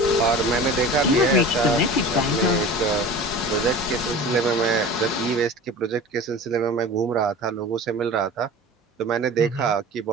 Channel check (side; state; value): both; normal; correlation 0.37